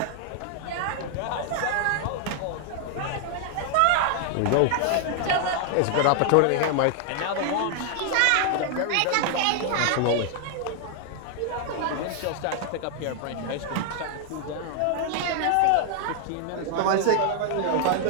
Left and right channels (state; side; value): different; both; correlation 0.00